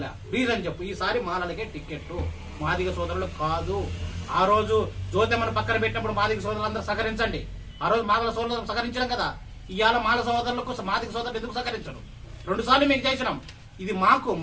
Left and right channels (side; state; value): both; identical; correlation 1.00